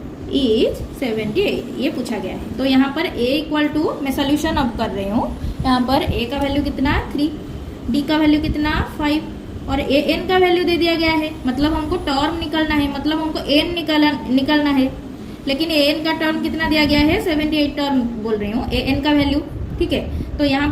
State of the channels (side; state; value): both; identical; correlation 1.00